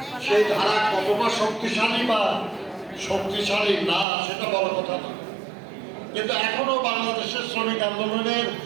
সেই ধারা কতটা শক্তিশালী বা শক্তিশালী না সেটা বড় কথা না, কিন্তু এখনো বাংলাদেশের শ্রমিক আন্দোলনের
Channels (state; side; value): drops out; left; at 4.0 s